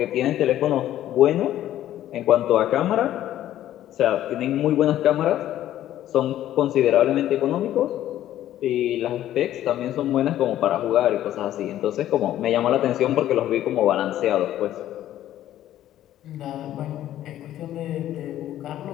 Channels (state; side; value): quieter; right; 12.6 dB